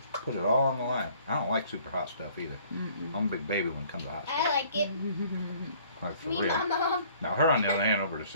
Put it all on the line. I don't like super hot stuff either. I'm a big baby when it comes to hot stuff. I like it. Like for Me, real. my mom, Now her on the other hand over the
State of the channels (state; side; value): inverted; both; correlation -0.56